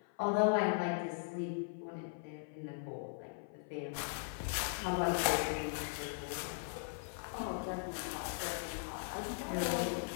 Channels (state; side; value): silent; right; 52 dB below the other